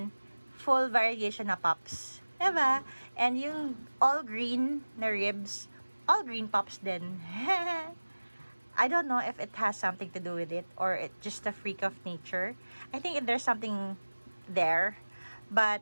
full variegation na pops. Diba? And yung all green na ribs, all green pops din. I don't know if it has something to do with it or it's just a freak of nature. I think there's something there.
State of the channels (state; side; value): inverted; both; correlation -1.00